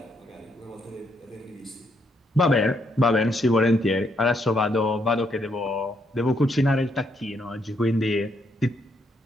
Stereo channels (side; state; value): both; normal; correlation 0.75